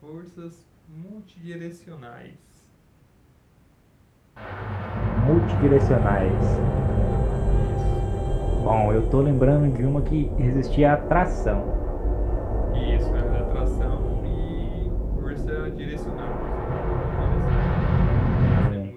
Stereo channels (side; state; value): both; identical; correlation 1.00